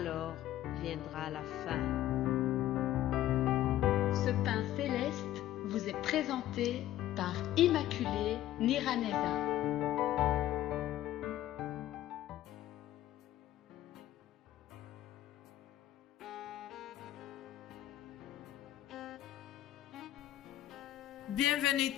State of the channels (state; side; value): quieter; right; 13.3 dB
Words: viendra la fin. Ce pain céleste vous est présenté par Immaculée Niraneza. Bienvenue